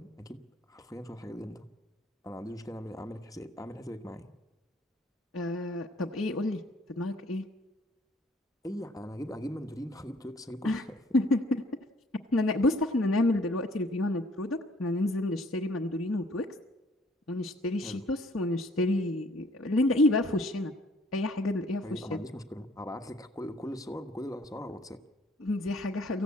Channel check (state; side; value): normal; both; correlation 0.59